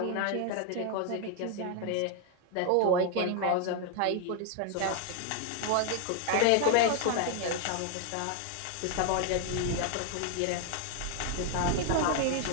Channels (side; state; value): both; different; correlation 0.00